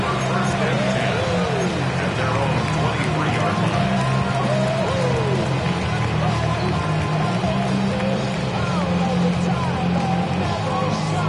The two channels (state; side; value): identical; both; correlation 1.00